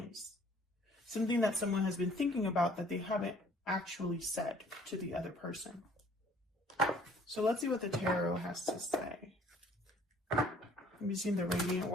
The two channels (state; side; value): normal; both; correlation 0.56